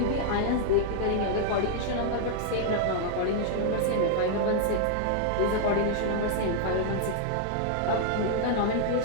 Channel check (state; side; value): different; both; correlation -0.01